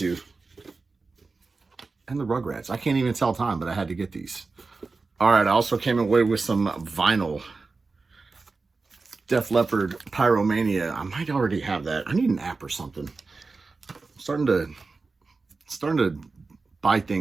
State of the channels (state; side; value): quieter; left; 4.0 dB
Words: the Rugrats. I can't even tell time, but I had to get these. All right, I also came away with some vinyl. Def Leppard Pyromania. I might already have that. I need an app or something. I'm starting to buy